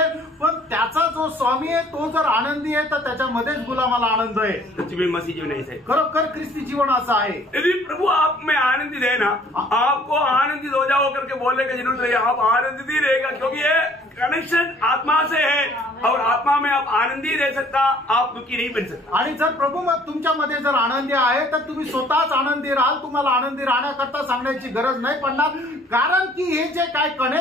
पण त्याचा जो स्वामी आहे तो जर आनंदी आहे तर त्याच्यामध्येच गुलामाला आनंद आहे। सच्ची मसीह जीवन ऐसे खरोखर ख्रिस्ती जीवन असं आहे। यदि प्रभु आप में आनंदित है ना, आपको आनंदित हो जाओ करके बोलने की जरूरत नहीं, आप आनंदित ही रहेगा, क्योंकि ये कनेक्शन आत्मा से है और आत्मा में आप आनंदी रह सकता, आप दुखी नहीं बन सकता। आणि जर प्रभू मग तुमच्यामध्ये जर आनंदी आहे तर तुम्ही स्वतःच आनंदी राहाल, तुम्हाला आनंदी राहण्याकरता सांगण्याची गरज नाही पडणार, कारण की हे जे काय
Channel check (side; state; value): both; normal; correlation 0.56